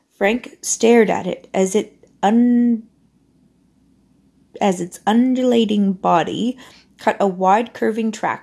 Frank stared at it as its undulating body cut a wide curving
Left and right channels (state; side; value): identical; both; correlation 1.00